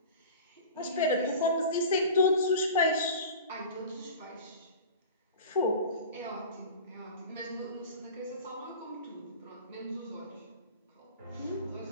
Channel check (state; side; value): inverted; both; correlation -0.36